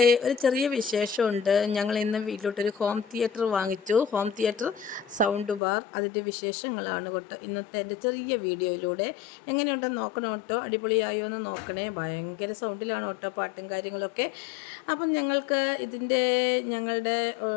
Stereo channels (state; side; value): drops out; right; at 5.6 s